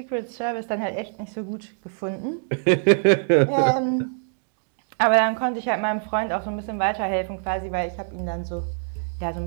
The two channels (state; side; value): silent; left; digital silence